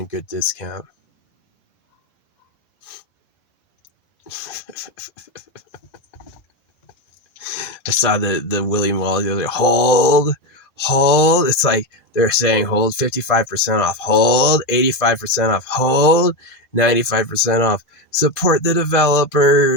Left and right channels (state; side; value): late; right; 2.0 ms